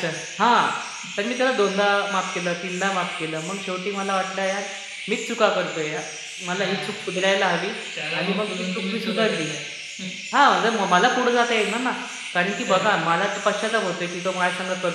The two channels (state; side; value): identical; both; correlation 1.00